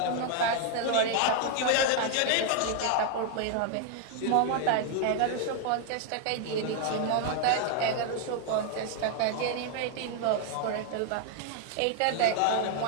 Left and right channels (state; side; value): different; both; correlation 0.00